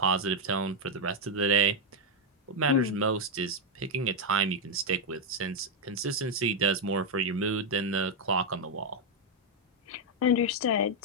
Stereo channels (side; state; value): both; normal; correlation 0.01